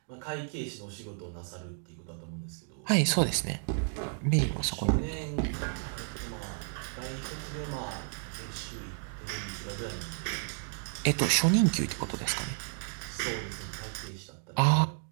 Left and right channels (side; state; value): left; silent; 56 dB below the other